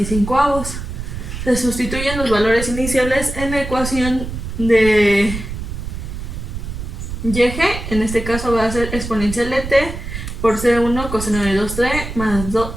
Se sustituyen los valores iniciales en la ecuación de YG. En este caso va a ser exponencial de t por C1 coseno de 2t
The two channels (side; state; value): right; noise; rumble, 7 dB below the sound